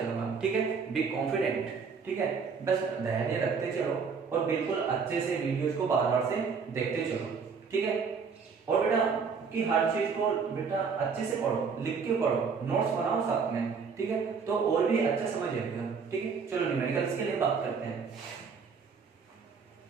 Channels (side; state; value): left; quieter; 5.6 dB